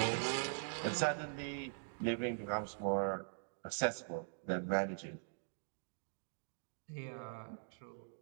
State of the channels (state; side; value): silent; left; digital silence